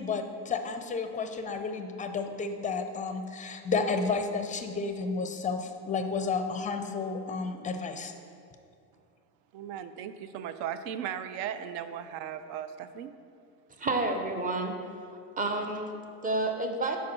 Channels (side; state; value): both; normal; correlation 0.09